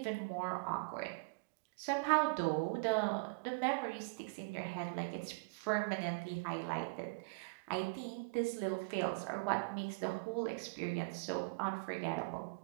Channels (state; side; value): quieter; left; 32.7 dB